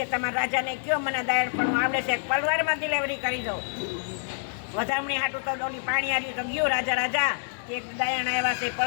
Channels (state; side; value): silent; right; digital silence